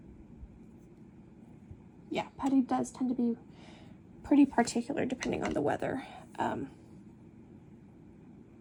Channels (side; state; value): both; identical; correlation 1.00